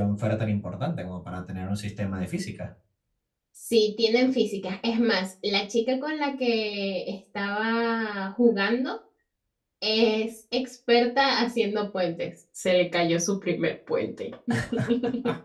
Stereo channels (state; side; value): identical; both; correlation 1.00